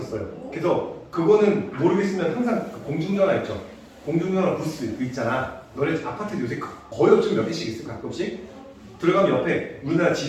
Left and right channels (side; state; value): both; identical; correlation 1.00